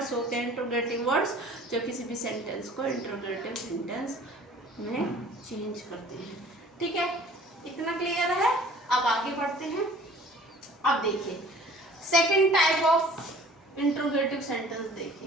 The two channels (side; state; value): both; normal; correlation 0.49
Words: होते हैं इंट्रोगेटिव वर्ड्स जो किसी भी सेंटेंस को इंट्रोगेटिव सेंटेंस में चेंज करते हैं। ठीक है, इतना क्लियर है? अब आगे बढ़ते हैं। अब देखिए second type of interrogative sentence